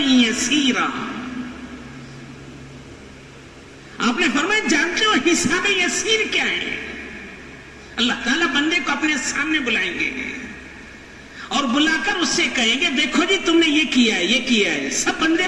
آپ نے فرمایا جانتے ہو حساب یسیر کیا ہے؟ اللہ تعالیٰ بندے کو اپنے سامنے بلائیں گے اور بلا کر اس سے کہیں گے دیکھو جی تم نے یہ کیا ہے، یہ کیا ہے، سب بندے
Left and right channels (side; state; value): both; identical; correlation 1.00